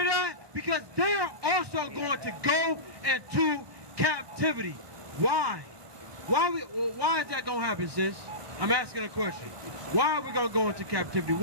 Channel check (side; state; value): left; late; 1.2 ms